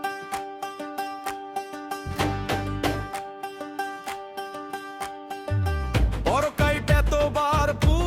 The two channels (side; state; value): both; identical; correlation 1.00